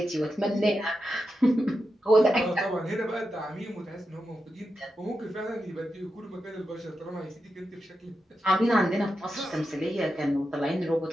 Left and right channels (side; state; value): both; normal; correlation 0.88